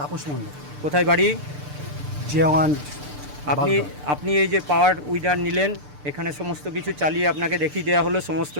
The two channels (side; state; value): left; late; 6.8 ms